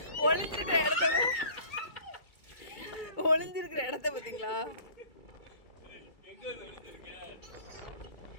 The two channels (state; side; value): late; right; 2.3 ms